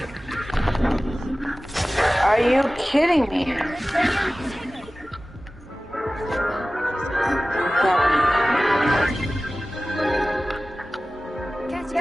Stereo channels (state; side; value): normal; both; correlation 0.97